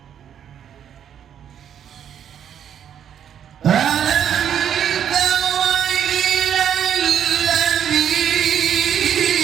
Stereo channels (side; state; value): left; quieter; 9.1 dB